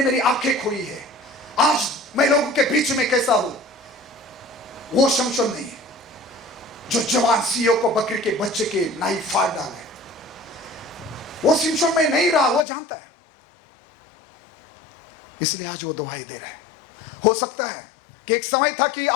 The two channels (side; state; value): right; drops out; at 12.7 s